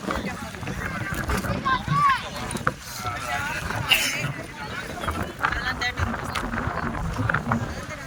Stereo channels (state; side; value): identical; both; correlation 1.00